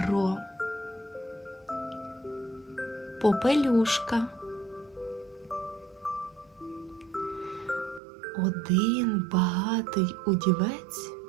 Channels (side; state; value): left; drops out; at 8.0 s